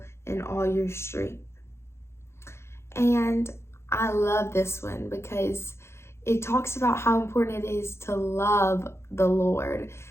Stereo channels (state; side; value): late; right; 0.13 ms